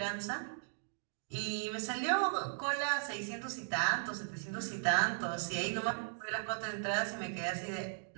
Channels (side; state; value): left; silent; digital silence